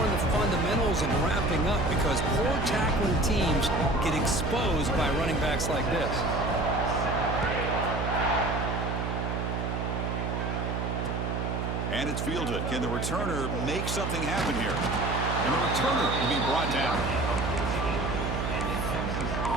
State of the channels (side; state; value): right; noise; hum, 1 dB below the sound